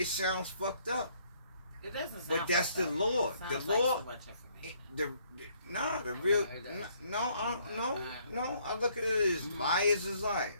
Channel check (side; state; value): both; inverted; correlation -0.66